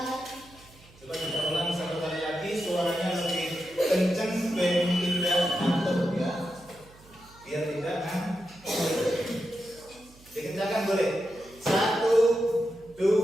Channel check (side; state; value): right; noise; hum, 25 dB below the sound